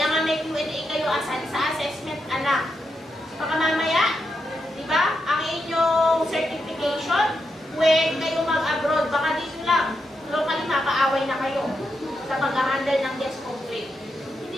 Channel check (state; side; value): normal; both; correlation 0.84